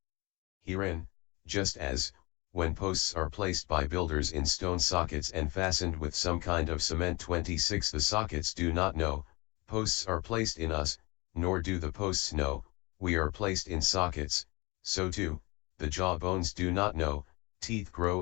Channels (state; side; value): quieter; right; 25.5 dB